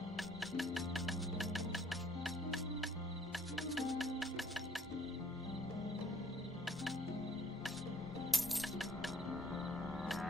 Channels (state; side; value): normal; both; correlation 0.60